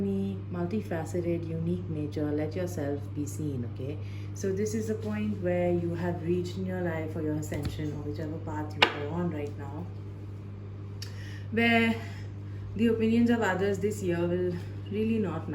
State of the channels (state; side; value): identical; both; correlation 1.00